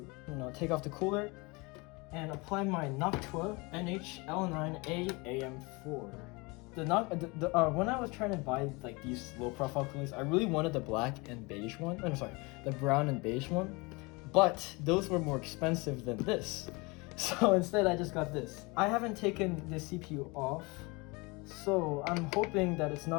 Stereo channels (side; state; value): right; quieter; 26.5 dB